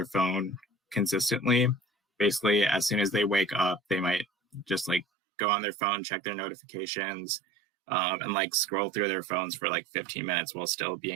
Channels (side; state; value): left; drops out; at 5.1 s